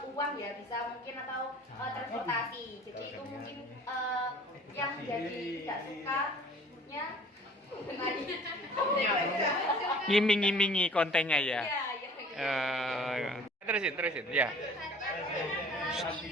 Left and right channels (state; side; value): normal; both; correlation 0.50